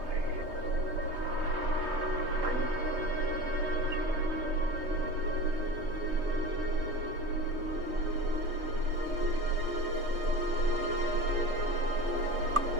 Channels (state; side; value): late; left; 3.2 ms